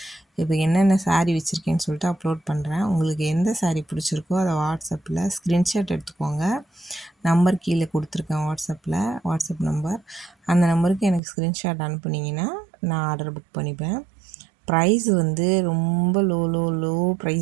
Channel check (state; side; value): drops out; left; at 11.2 s